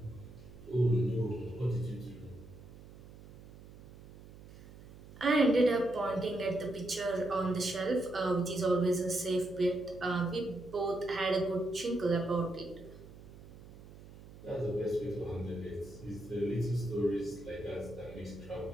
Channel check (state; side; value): noise; right; hum, 18 dB below the sound